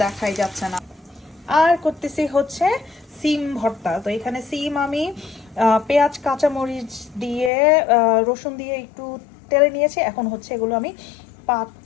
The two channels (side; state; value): right; drops out; at 7.5 s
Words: দেখাই যাচ্ছে না। আর করতেছি হচ্ছে সিম ভর্তা। তো এখানে সিম আমি পেঁয়াজ কাঁচামরিচ দিয়ে রসুন দিয়ে একটু তেলে নিয়েছি। এখন হচ্ছে এগুলো আমি